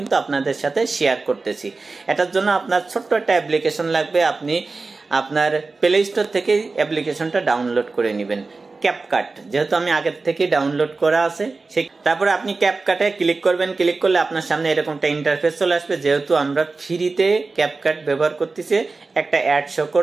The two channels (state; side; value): quieter; left; 3.8 dB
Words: আপনাদের সাথে শেয়ার করতেছি। এটার জন্য আপনার ছোট্ট একটা অ্যাপ্লিকেশন লাগবে। আপনি আপনার প্লে স্টোর থেকে অ্যাপ্লিকেশনটা ডাউনলোড করে নেবেন। ক্যাপকাট, যেহেতু আমি আগের থেকে ডাউনলোড করা আছে, সেই তারপরে আপনি ক্যাপকাটে ক্লিক করবেন। ক্লিক করলে আপনার সামনে এরকম একটা ইন্টারফেস চলে আসবে। যেহেতু আমরা ফ্রিতে ক্যাপকাট ব্যবহার করতেছি, একটা অ্যাড শো